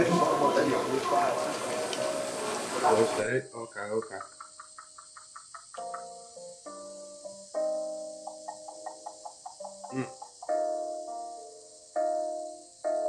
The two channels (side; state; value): both; identical; correlation 1.00